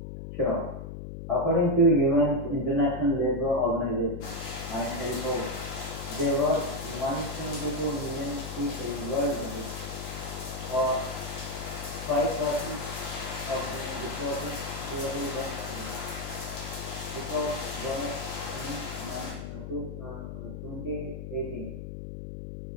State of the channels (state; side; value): noise; left; hum, 8 dB below the sound